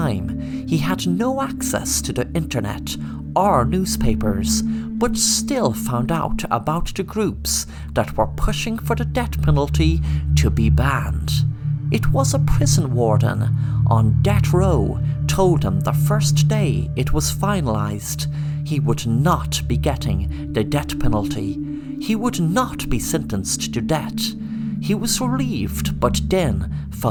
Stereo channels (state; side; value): identical; both; correlation 1.00